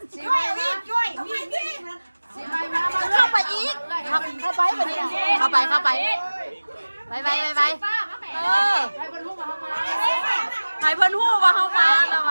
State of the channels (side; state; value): both; inverted; correlation -1.00